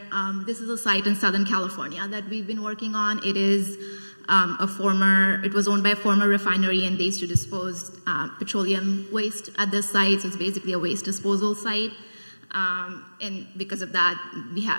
This is a site in Southern California that we've been working on. It is it was owned by a former refinery, and they used to dispose petroleum waste at this site, so it's basically a waste disposal site. And because of that, we have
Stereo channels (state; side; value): inverted; both; correlation -1.00